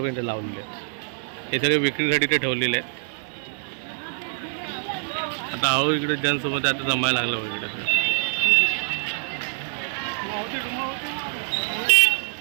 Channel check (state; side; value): silent; left; 56 dB below the other